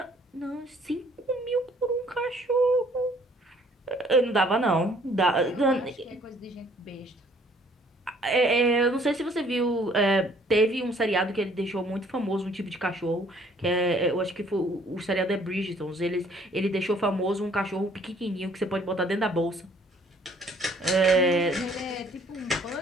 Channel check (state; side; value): normal; both; correlation 0.60